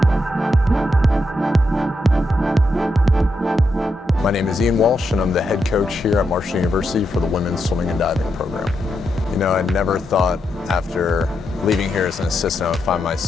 name is Walsh, and I'm the head coach here at Marshall University for the women's swimming and diving program. You know, I never thought after leaving here as an assistant I would find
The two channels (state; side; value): normal; both; correlation 0.83